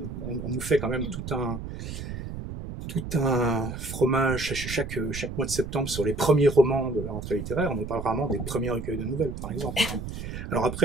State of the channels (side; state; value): right; noise; rumble, 7 dB below the sound